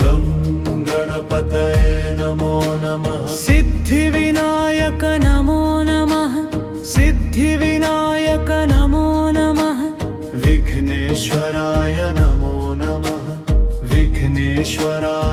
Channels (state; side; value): identical; both; correlation 1.00